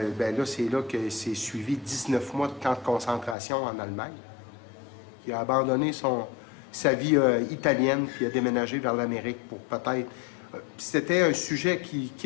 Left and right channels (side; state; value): right; drops out; at 3.4 s